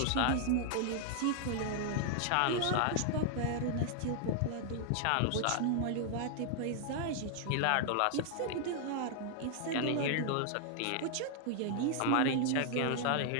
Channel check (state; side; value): different; both; correlation 0.00